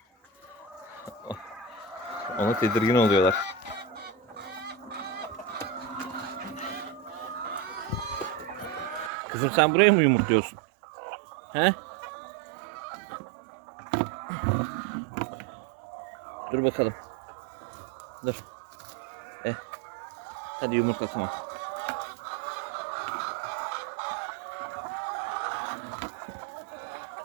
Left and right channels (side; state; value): left; drops out; at 9.1 s